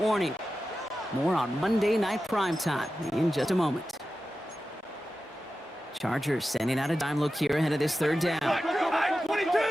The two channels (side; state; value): both; normal; correlation 0.93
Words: More on Monday Night Primetime in just a moment. Chargers sending out a dime look here ahead of this third down.